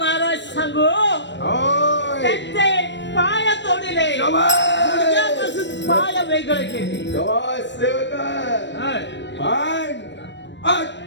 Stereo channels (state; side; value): late; right; 0.53 ms